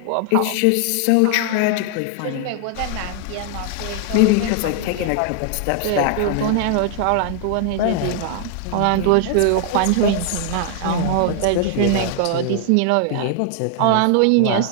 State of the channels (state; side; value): different; both; correlation 0.00